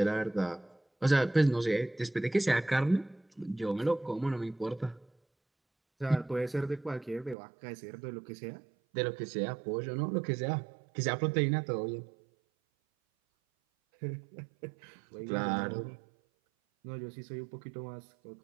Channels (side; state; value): left; drops out; at 7.4 s